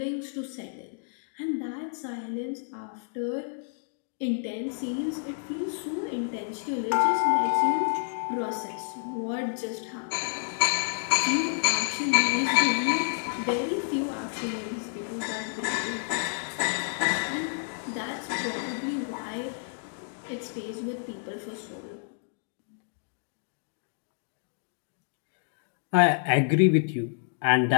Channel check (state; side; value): silent; right; digital silence